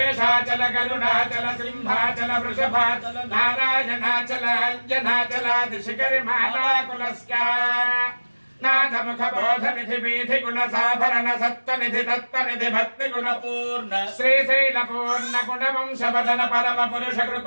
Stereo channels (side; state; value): both; inverted; correlation -1.00